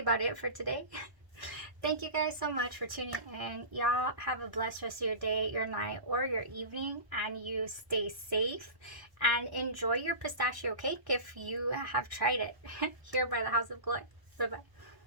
it for today. Thank you guys so much for tuning in. Y'all have a blessed rest of your day, your night, or your evening, and you stay safe and enjoy your pistachio cake if you have tried it here by the House of Gloi. Bye bye.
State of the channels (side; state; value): left; late; 1.0 ms